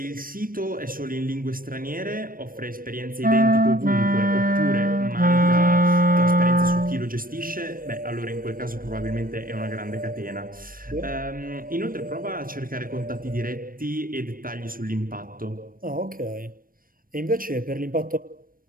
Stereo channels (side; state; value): left; late; 0.41 ms